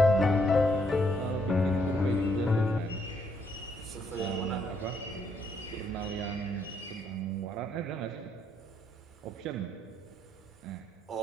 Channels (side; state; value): both; normal; correlation 0.73